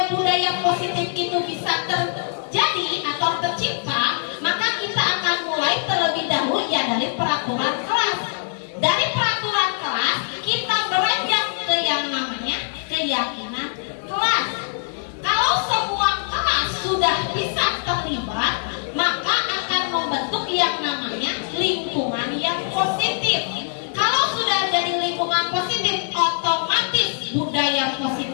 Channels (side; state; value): right; silent; digital silence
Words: budaya positif itu bisa terjadi atau tercipta? Maka kita akan mulai terlebih dahulu ya dari peraturan kelas. Dari peraturan kelas kita beranjak ke yang namanya keyakinan kelas. Kalau semua kelas sudah bisa terlibat, maka akan membentuk yang namanya lingkungan yang positif. Kalau sudah jadi lingkungan positif, otomatis budaya